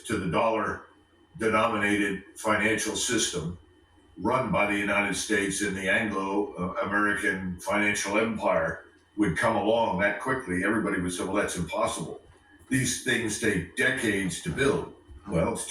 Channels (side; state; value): both; identical; correlation 1.00